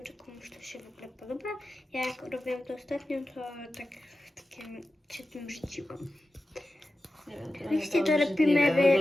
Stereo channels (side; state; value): both; normal; correlation 0.93